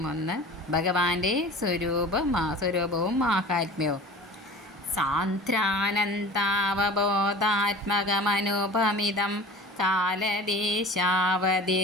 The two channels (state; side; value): normal; both; correlation 0.39